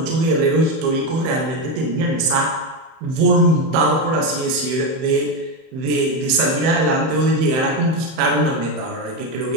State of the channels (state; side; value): late; left; 31 ms